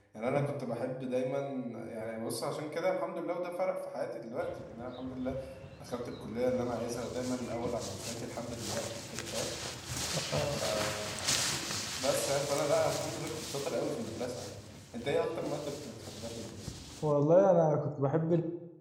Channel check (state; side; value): identical; both; correlation 1.00